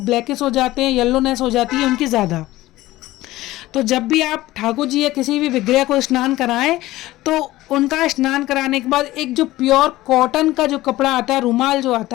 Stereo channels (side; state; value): right; quieter; 17.0 dB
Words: हो जाते हैं, येलोनेस हो जाती है उनकी ज़्यादा। तो जब भी आप ठाकुर जी या किसी भी विग्रह को स्नान कराएं तो उनका स्नान कराने के बाद एक जो प्योर कॉटन का जो कपड़ा आता है, रुमाल जो